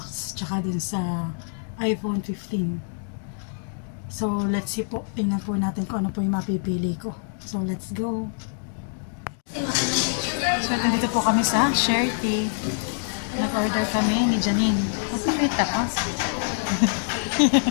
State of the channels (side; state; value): right; silent; 61 dB below the other